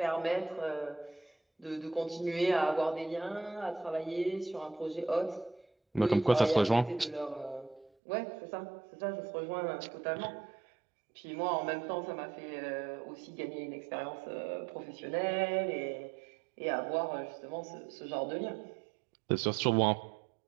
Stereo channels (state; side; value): drops out; left; at 7.9 s